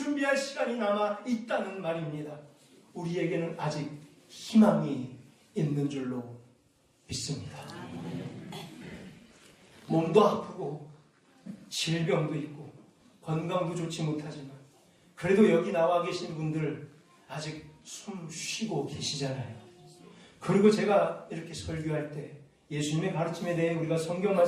시간이 남아있다는 말입니다. 우리에게는 아직 희망이 있는 줄로 믿습니다. 몸도 아프고 질병도 있고 건강도 좋지 못하지만 그래도 여기 나와 계신 분들 아직 숨 쉬고 계시잖아요. 그리고 제가 이렇게 설교할 때 예수님의 가르침에 대해 우리가 성경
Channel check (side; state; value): both; identical; correlation 1.00